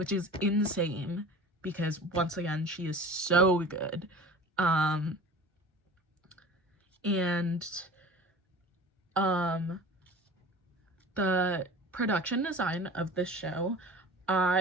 is insane because, once again, she is so good. The production design of this show,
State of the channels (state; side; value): normal; both; correlation 0.38